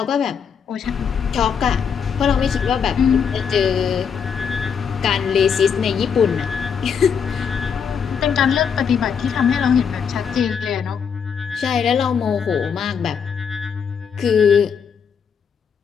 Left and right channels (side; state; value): right; quieter; 6.9 dB